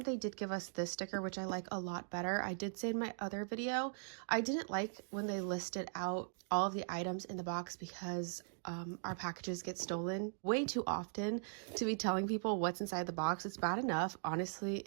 did give us this sticker, which I like a lot better. I did say in my other video I didn't like when they listed out all of the items in the box because our packages get stolen way too often to be telling people what's inside the box. It's bad enough, honestly,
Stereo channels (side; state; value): left; silent; digital silence